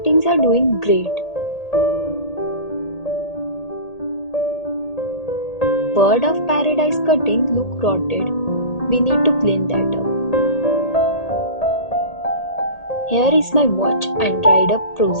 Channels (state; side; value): late; right; 1.8 ms